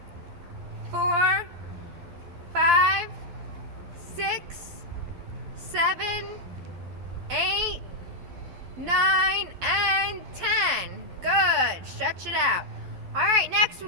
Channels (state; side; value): late; left; 12 ms